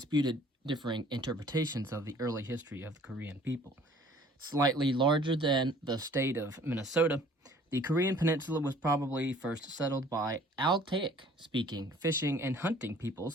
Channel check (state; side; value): normal; both; correlation 0.54